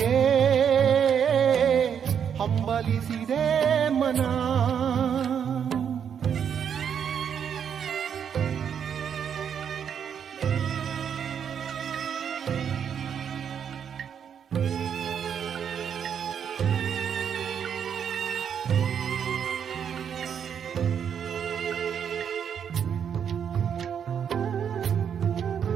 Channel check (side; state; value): left; quieter; 8.0 dB